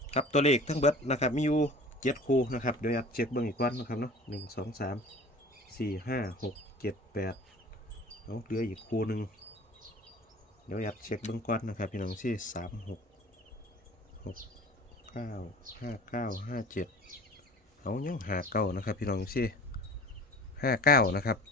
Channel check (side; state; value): both; normal; correlation 0.42